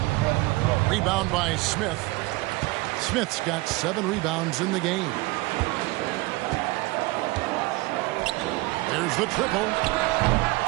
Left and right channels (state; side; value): quieter; left; 22.0 dB